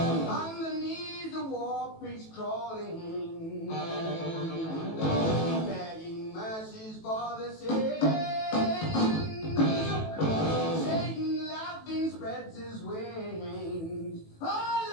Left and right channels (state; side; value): late; right; 18 ms